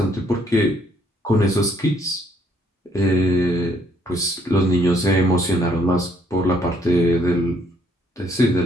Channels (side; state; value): both; normal; correlation 0.67